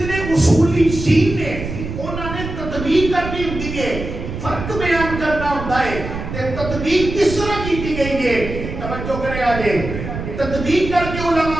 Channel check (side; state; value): right; noise; rumble, 7 dB below the sound